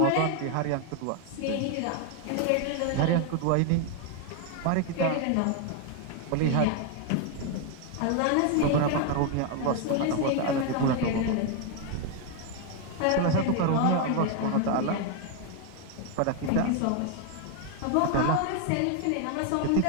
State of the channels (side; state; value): both; different; correlation 0.01